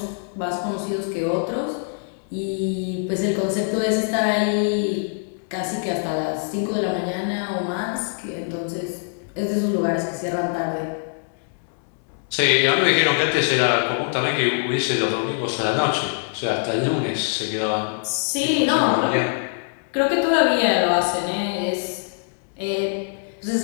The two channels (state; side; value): silent; right; digital silence